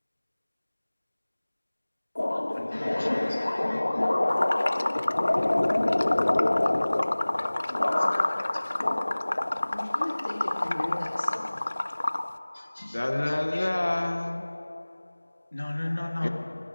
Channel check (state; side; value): inverted; both; correlation -1.00